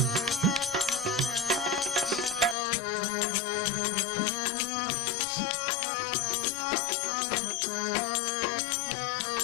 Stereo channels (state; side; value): drops out; right; at 2.6 s